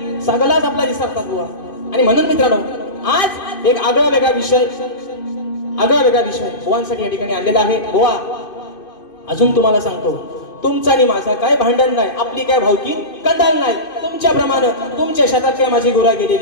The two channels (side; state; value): right; late; 2.5 ms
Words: सगळाच आपला विसरतात बुवा आणि म्हणून मित्रांनो आज एक आगळा वेगळा विषय बुवांसाठी या ठिकाणी आणलेला आहे बुवा अजून तुम्हाला सांगतो तुमचा आणि माझा काय भांडण नाही आपली काय भावकी कंदाल नाही तुमच्याप्रमाणे तुमच्या शेतात काय माझी गुरा